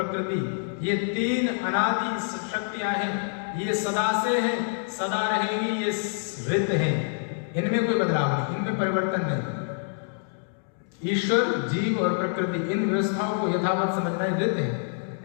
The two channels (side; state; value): right; silent; digital silence